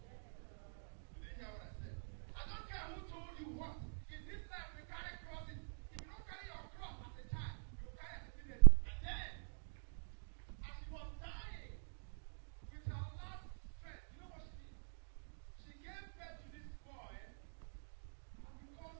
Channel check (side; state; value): left; silent; digital silence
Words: You didn't hear what I said. I don't care who told you what. In this life, we carry crosses. If you don't carry your cross as a child, you will carry as a teenager. And then, as she was dying, with her last strength, you know what she did? She gave birth to this boy, and because